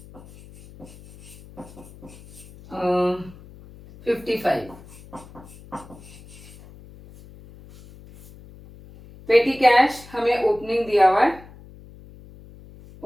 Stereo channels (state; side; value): noise; left; hum, 20 dB below the sound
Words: 55. पेटी कैश हमें ओपनिंग दिया हुआ है.